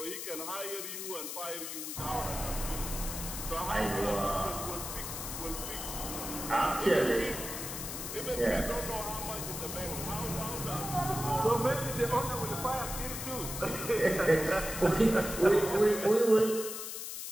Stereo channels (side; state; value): left; noise; hiss, 6 dB below the sound